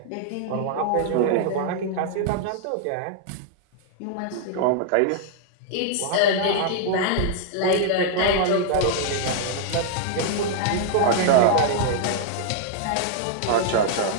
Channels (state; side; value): different; both; correlation -0.01